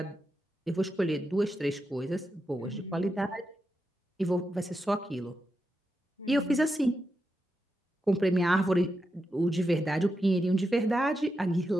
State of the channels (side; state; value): both; normal; correlation 0.87